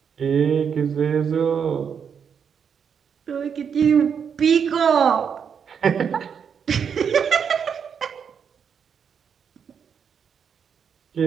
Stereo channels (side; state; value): left; quieter; 7.1 dB